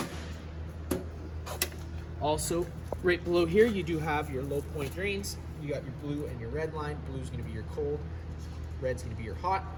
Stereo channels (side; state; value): both; identical; correlation 1.00